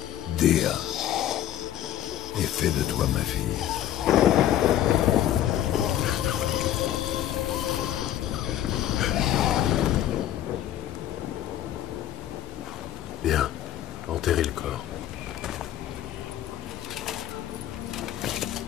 Dea, et fais de toi ma fille. Bien, enterrez le corps.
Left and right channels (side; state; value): right; quieter; 12.0 dB